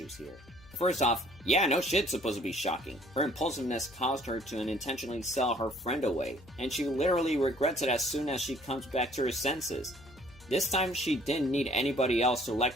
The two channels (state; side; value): noise; left; hum, 23 dB below the sound